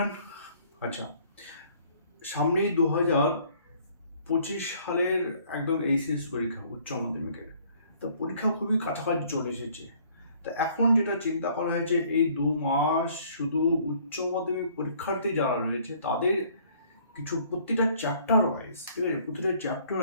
আচ্ছা, সামনেই 2025 সালের একদম এইচএস পরীক্ষা, উচ্চ মাধ্যমিকের। তো পরীক্ষা খুবই কাছাকাছি চলে এসেছে। তো এখন যেটা চিন্তা করা হয়েছে, এই 2 মাস শুধু উচ্চ মাধ্যমিক পরীক্ষার্থী যারা রয়েছে তাদের কিছু প্রতিটা চ্যাপ্টার ওয়াইজ, ঠিক আছে, প্রতিটা চ্যাপ্টার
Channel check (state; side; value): inverted; both; correlation -0.59